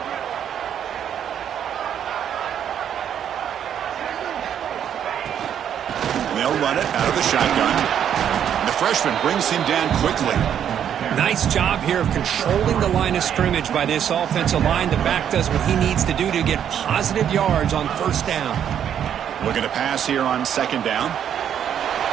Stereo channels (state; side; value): quieter; left; 9.2 dB